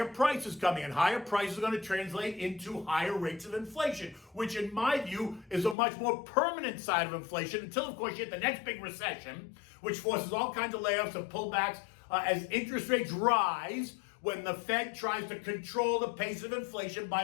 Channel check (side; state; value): right; drops out; at 5.8 s